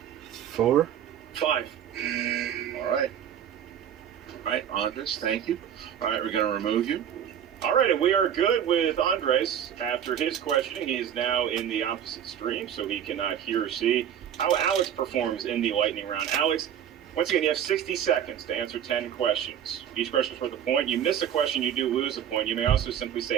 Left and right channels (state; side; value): quieter; left; 9.5 dB